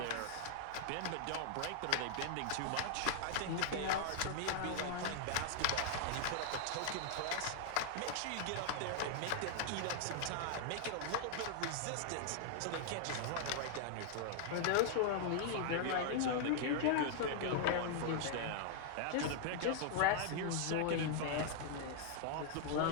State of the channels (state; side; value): different; both; correlation 0.00